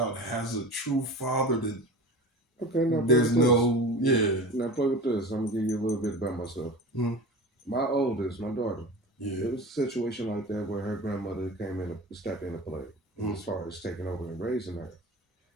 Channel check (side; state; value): both; normal; correlation 0.34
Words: has a true father that... Okay, now there's Now play with this. I'm going to give you a little bit about myself. Mm-hmm. My oldest, my daughter, it was a situation like that where her grandmother stepped into play as far as taking over and raising her.